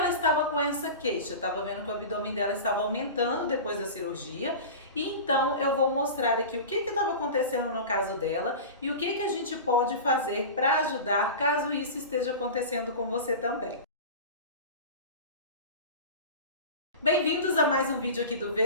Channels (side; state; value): both; inverted; correlation -0.31